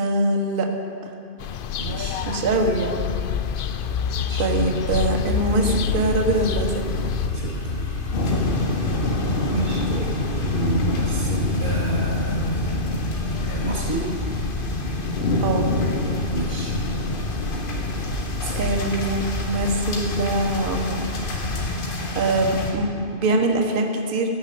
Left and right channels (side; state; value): right; late; 2.5 ms